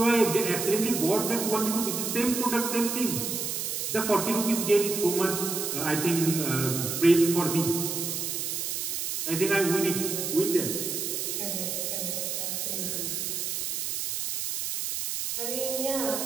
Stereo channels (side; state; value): right; noise; hiss, 2 dB below the sound